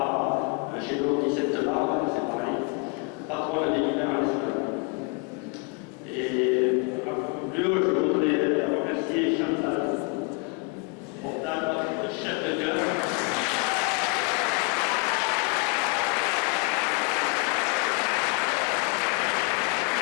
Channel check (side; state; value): right; quieter; 30.1 dB